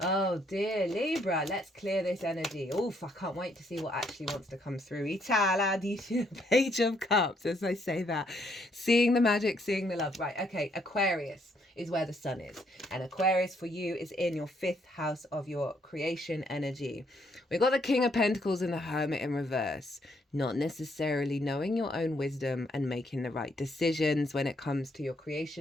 Oh dear, Libra, let's clear this energy. Oof, I can't wait to see what actually wants to come through. Page of Cups, as I say that. Seeing the magic, seeing the love. Right, okay, Aquarius is where the sun is. And Aquarius for you is in your 5th house of your creation energy. We've got the King of Pentacles and the Hermit in reverse. Not necessarily knowing your own wisdom and making the right decisions when it comes to your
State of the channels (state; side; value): normal; both; correlation 0.71